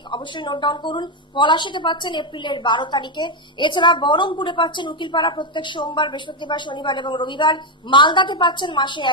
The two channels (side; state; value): both; normal; correlation 0.05